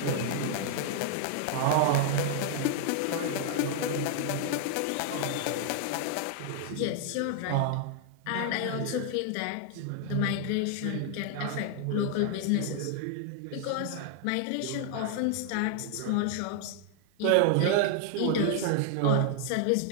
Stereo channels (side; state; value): both; different; correlation 0.00